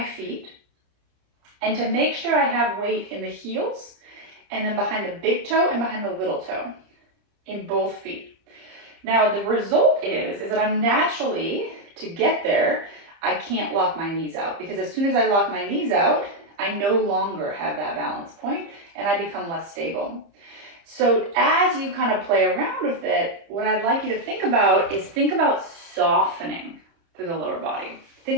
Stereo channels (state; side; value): late; left; 30 ms